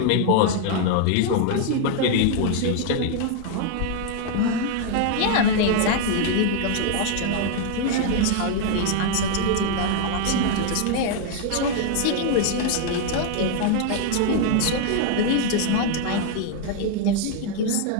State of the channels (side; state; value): both; different; correlation 0.00